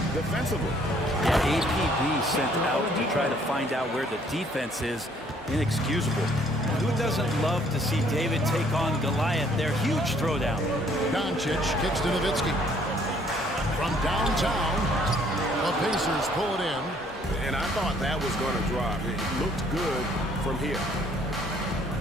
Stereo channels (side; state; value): both; normal; correlation 0.62